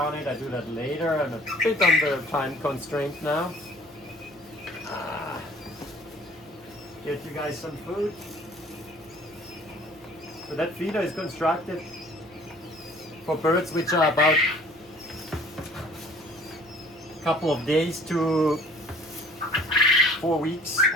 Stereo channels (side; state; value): right; noise; hum, 28 dB below the sound